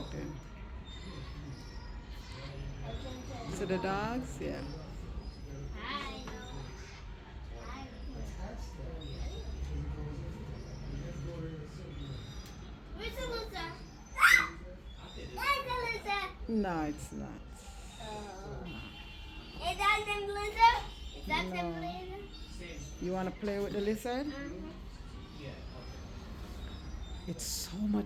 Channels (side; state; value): both; identical; correlation 1.00